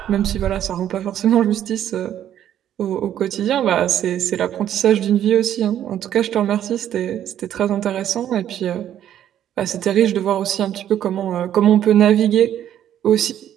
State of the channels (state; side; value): quieter; left; 10.8 dB